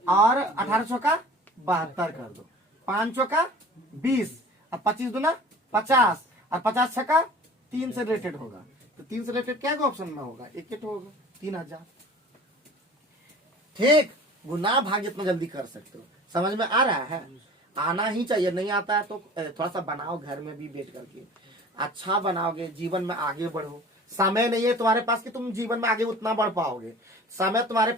और 18 चौका 72 कर दो, 5 चौका 20, और 25 गुना 50, और 50 छक्का 3 से रिलेटेड होगा, तो 3 से रिलेटेड क्या ऑप्शन में होगा, एक होगा 3000, ठीक। गुना भाग जितना जल्दी कर सकते हो, समझ में आ रहा है, आना ही चाहिए, नहीं आता है तो थोड़ा सा बनाओ घर में भी बैठ करके, अच्छा बनाओगे जीवन में आगे बढ़ो। समय नहीं है तुम्हारे पास कि तुम जीवन में आगे उतना बढ़ पाओगे, समय तुम्हारे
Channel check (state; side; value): normal; both; correlation 0.43